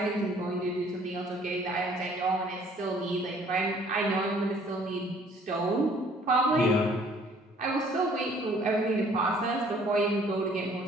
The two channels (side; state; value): both; normal; correlation 0.58